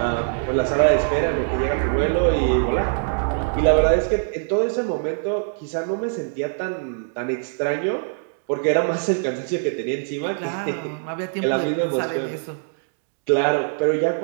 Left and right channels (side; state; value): left; silent; digital silence